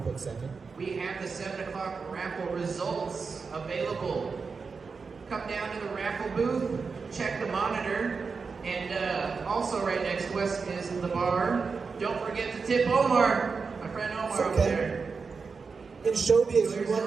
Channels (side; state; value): left; quieter; 5.0 dB